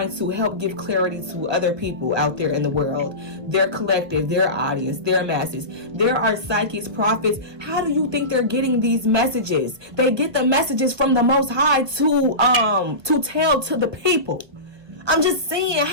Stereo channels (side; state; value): left; late; 1.3 ms